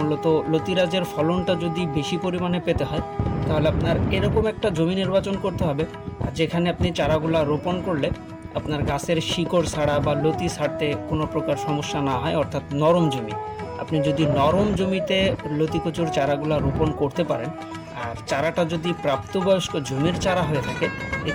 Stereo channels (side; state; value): both; identical; correlation 1.00